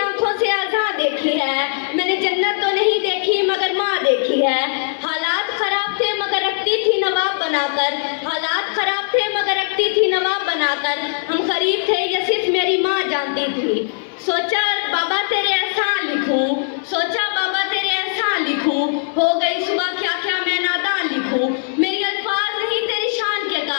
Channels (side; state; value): right; silent; 66 dB below the other